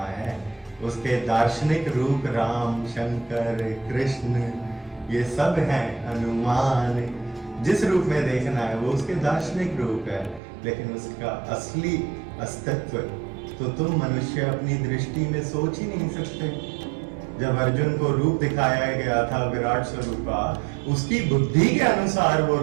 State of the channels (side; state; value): left; drops out; at 10.4 s